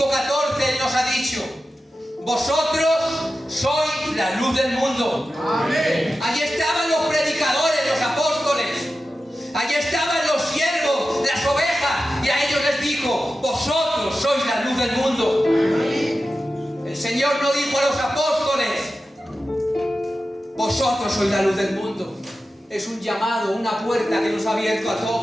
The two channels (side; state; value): both; normal; correlation 0.92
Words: Él nos ha dicho: vosotros sois la luz del mundo. Amén. Allí estaban los predicadores, los apóstoles, allí estaban los siervos, las ovejas, y a ellos les dijo: vosotros sois la luz del mundo. Amén. El Señor no dijo a los apóstoles: vosotros sois la luz del mundo. Es un llamado, una puerta que nos ha abierto a